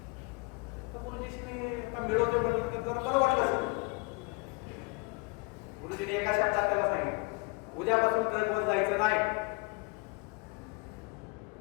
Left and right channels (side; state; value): right; quieter; 28.2 dB